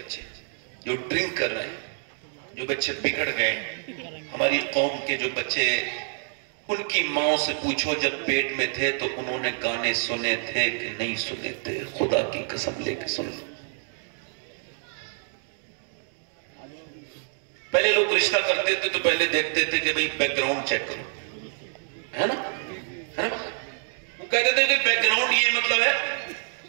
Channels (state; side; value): silent; left; 57 dB below the other